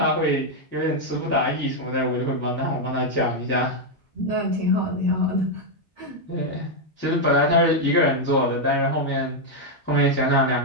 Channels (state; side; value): normal; both; correlation 0.01